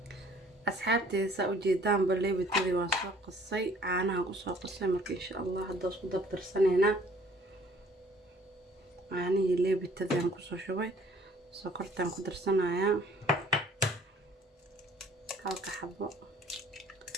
asxaabteyda sa u jeedaan leebitadii waa soo qasay caanaha ku soo qasay marka insha Allah hadda isku dabtarsanayna caanihi leebitadii aan ku soo shubay sokortaan ku darsanaya halka xabo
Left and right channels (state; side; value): normal; both; correlation 0.56